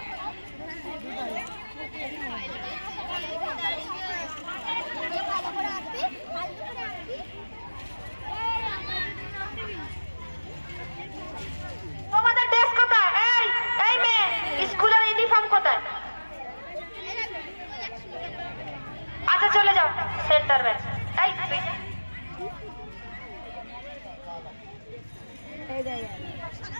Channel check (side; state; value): both; inverted; correlation -1.00